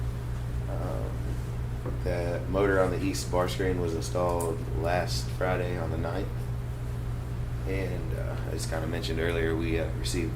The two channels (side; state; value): both; identical; correlation 1.00